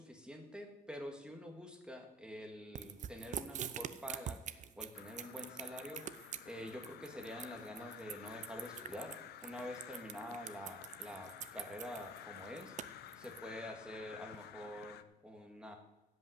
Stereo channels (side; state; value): both; normal; correlation 0.46